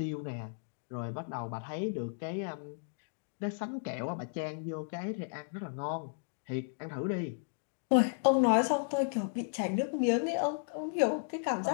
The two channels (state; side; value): silent; right; digital silence